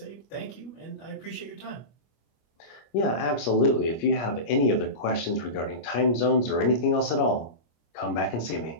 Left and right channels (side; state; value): right; late; 25 ms